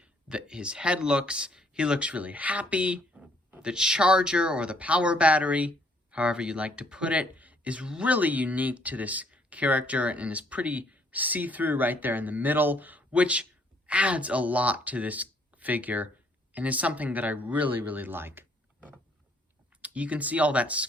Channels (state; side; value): normal; both; correlation 0.65